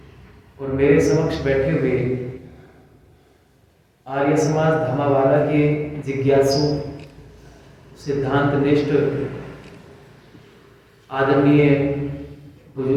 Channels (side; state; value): both; identical; correlation 1.00